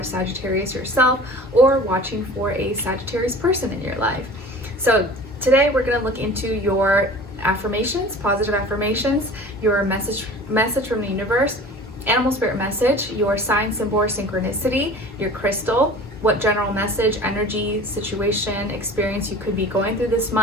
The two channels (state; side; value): normal; both; correlation 0.41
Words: Sagittarius yourself or watching for a Sagittarius person in your life. So today we're going to look into your affirmations, positive affirmations, your message from the universe, animal spirit message, your sign, symbol, or synchronicity, your crystal, what general message, energy, situation, experience you could be going through this